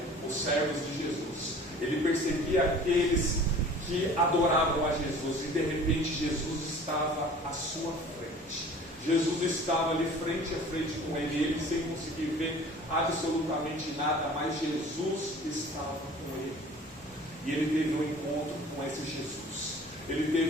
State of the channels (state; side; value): normal; both; correlation 0.46